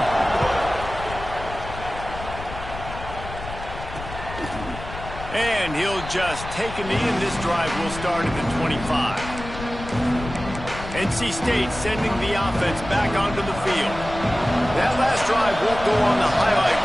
And he'll just take a knee, and this drive will start at the 25. NC State sending the offense back onto the field. That last drive won't go on the highlight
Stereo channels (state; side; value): noise; left; rumble, 11 dB below the sound